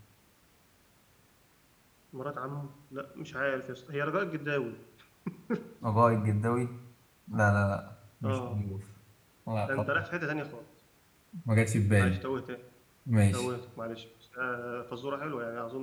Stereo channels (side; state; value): both; identical; correlation 1.00